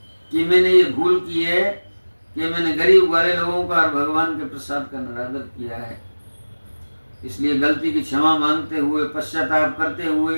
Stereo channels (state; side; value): inverted; both; correlation -1.00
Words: कि मैंने ये भूल की है कि मैंने गरीब वाले लोगों का और भगवान के प्रसाद का निरादर किया है। इसलिए गलती की क्षमा मांगते हुए, पश्चाताप करते